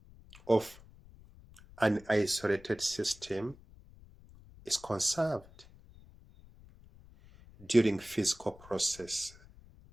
of an isolated system is conserved during physical process.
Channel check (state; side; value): noise; left; rumble, 22 dB below the sound